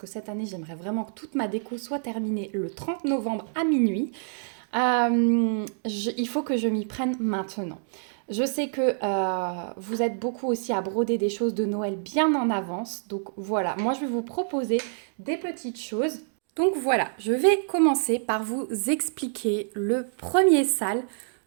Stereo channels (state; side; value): silent; left; digital silence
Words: cette année, j'aimerais vraiment que toute ma déco soit terminée le 30 novembre à minuit, il faut que je m'y prenne maintenant. Je sais que vous êtes beaucoup aussi à broder des choses de Noël bien en avance. Donc voilà, moi je vais vous proposer des petites choses. Donc voilà, je vais commencer par vous expliquer le premier sale.